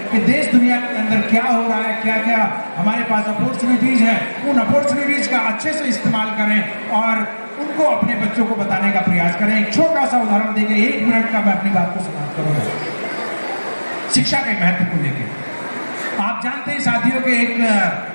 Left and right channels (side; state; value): both; inverted; correlation -1.00